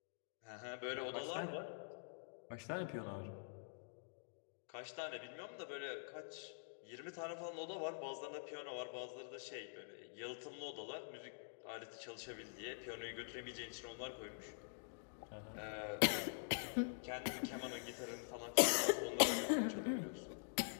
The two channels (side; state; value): right; silent; digital silence